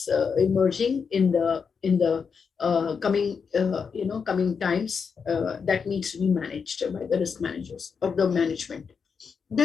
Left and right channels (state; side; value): quieter; right; 5.9 dB